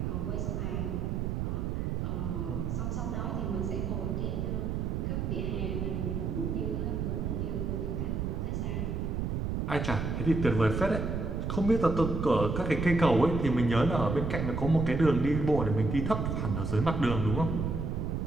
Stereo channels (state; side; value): noise; right; rumble, 1 dB below the sound